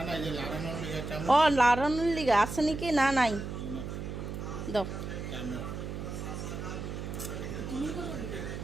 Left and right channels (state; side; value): noise; right; hum, 6 dB below the sound